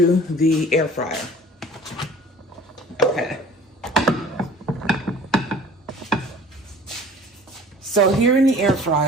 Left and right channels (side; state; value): both; normal; correlation 0.46